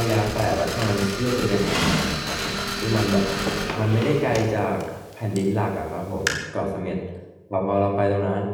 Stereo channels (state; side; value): identical; both; correlation 1.00